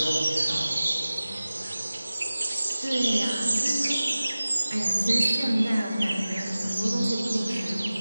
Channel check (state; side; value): inverted; both; correlation -0.97